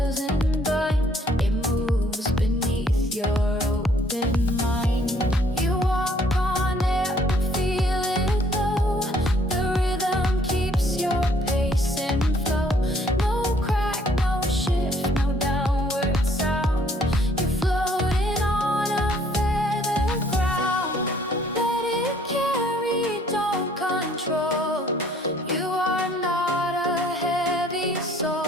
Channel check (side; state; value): both; normal; correlation 0.62